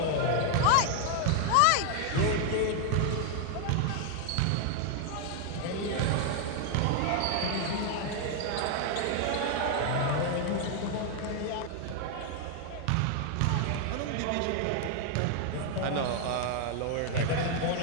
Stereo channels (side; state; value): both; different; correlation 0.00